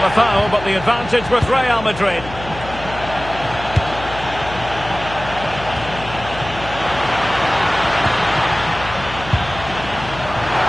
a foul, but the advantage with Real Madrid.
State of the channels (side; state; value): left; noise; hum, 13 dB below the sound